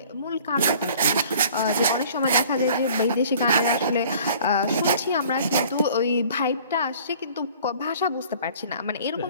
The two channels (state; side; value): inverted; both; correlation -0.51